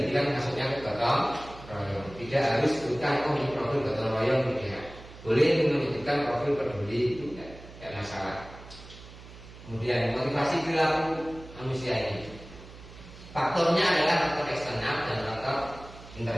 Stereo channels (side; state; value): right; noise; hum, 17 dB below the sound